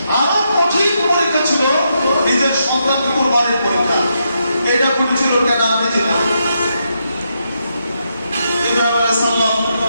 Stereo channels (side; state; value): both; inverted; correlation -0.81